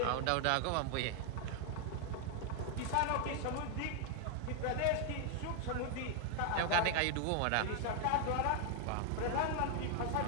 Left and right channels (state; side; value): different; both; correlation 0.00